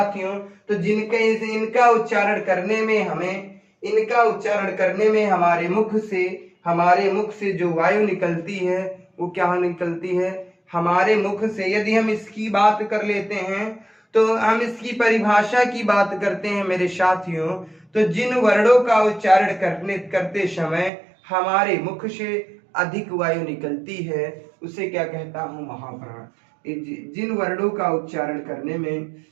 तो इनका उच्चारण करने में हमारे मुख से जो वायु निकलती है वो क्या निकलती है हमारे मुख से। यदि हम इसकी बात कर लेते हैं तो हम इसकी परिभाषा की बात करते हैं मेरे साथियों, तो जिन वर्णों का उच्चारण करते समय हमारे मुख से अधिक वायु निकलती है उसे क्या कहता हूं महाप्राण। जिन वर्णों का उच्चारण करने में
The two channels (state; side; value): drops out; left; at 20.9 s